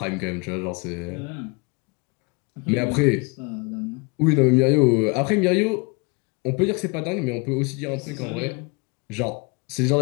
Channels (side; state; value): right; quieter; 29.6 dB